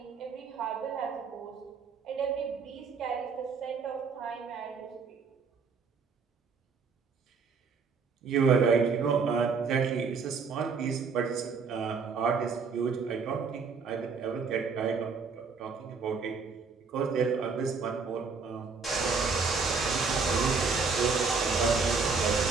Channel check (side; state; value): left; quieter; 5.1 dB